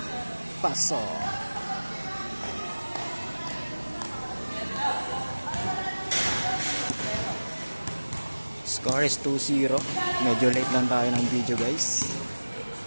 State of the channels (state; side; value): inverted; both; correlation -1.00